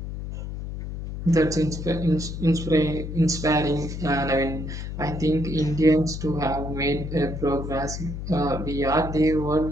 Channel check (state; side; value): noise; left; hum, 7 dB below the sound